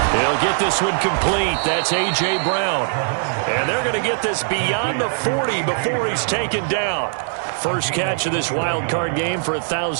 He'll get this one complete. That's A.J. Brown. And they're going to get this beyond the 40 before he's taken down. First catch of this wild card game for a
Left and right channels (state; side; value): silent; left; 57 dB below the other